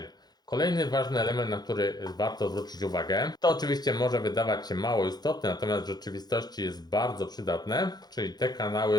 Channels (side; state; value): right; late; 0.20 ms